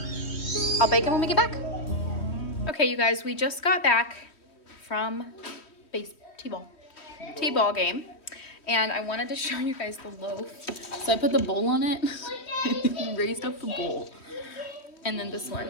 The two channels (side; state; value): right; late; 3.1 ms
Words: I'll bake them when we get back. Okay, you guys, we just got back from T-ball game, and I wanted to show you guys the loaf. So I put the bowl on it, raised up the bowl, and then this